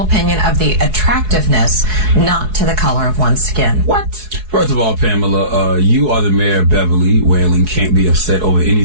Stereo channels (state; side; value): late; left; 4.7 ms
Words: opinion of the attractiveness, not to the color of one's skin. What? First of all, Pamela, you are the mayor of Beverly Whaling. Can't be upset over any